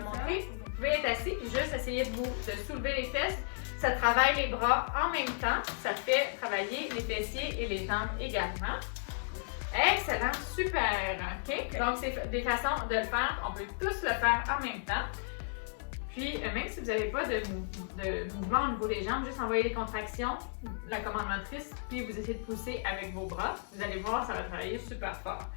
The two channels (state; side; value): silent; right; digital silence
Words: montrer. Vous pouvez être assis et juste essayer de soulever les fesses. Ça travaille les bras en même temps. Ça fait travailler les fessiers et les jambes également. Excellent, super. OK? Donc, c'est des façons de le faire. On peut tous le faire en même temps. Puis, même si vous n'avez pas de mouvement au niveau des jambes, juste envoyer les contractions, la commande motrice, puis vous essayez de pousser avec vos bras. Vous allez voir, ça va travailler super fort.